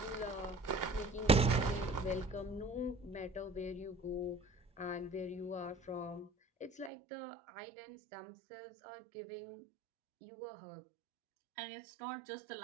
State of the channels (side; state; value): left; drops out; at 6.9 s